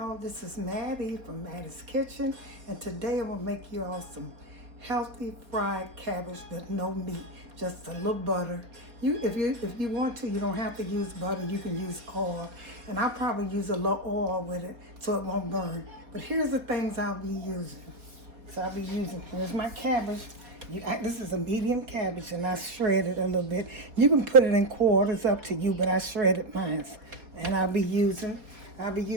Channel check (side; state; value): left; late; 4.3 ms